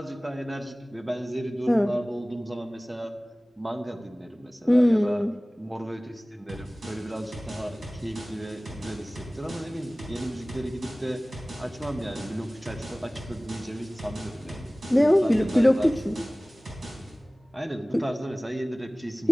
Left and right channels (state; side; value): normal; both; correlation 0.98